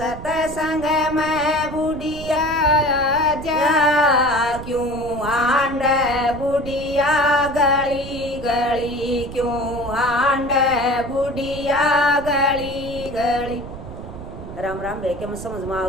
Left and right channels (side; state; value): right; noise; rumble, 12 dB below the sound